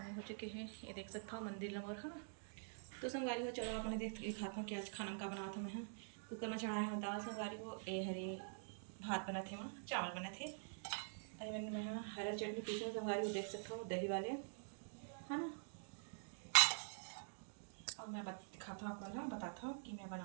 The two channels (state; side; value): silent; left; digital silence